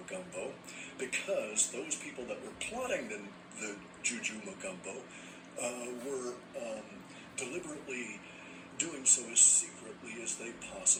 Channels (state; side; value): identical; both; correlation 1.00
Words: because those people that were plotting the Juju Magumbo were deliberately doing so as secretly as they